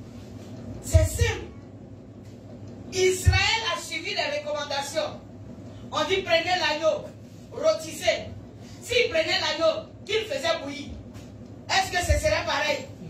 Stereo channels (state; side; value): identical; both; correlation 1.00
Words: C'est simple. Israël a suivi les recommandations. On dit prenez l'agneau, rôtissez. S'il prenait l'agneau, qu'il faisait bouillir, est-ce que ce serait pareil?